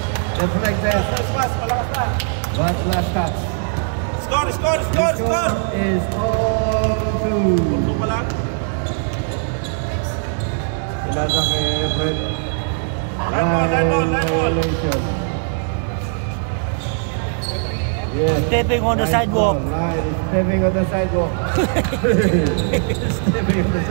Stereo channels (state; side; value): silent; left; 64 dB below the other